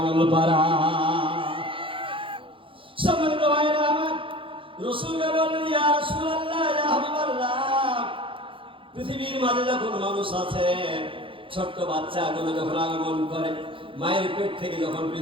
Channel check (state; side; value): late; left; 0.25 ms